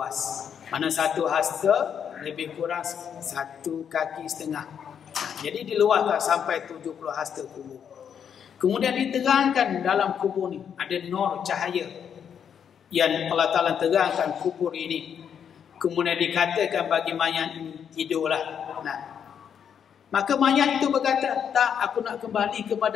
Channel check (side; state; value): right; quieter; 8.0 dB